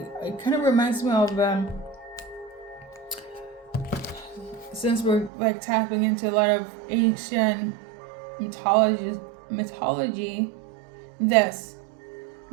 it kind of reminds me of, since we're like tapping into a lot of ancient mythology, this,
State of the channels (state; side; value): drops out; left; at 5.3 s